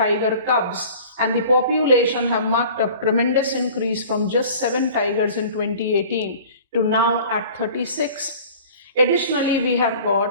cubs, and the population have marked up tremendous increase from just 7 tigers in 2018 to now at 36. Additionally, we have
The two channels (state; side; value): inverted; both; correlation -0.44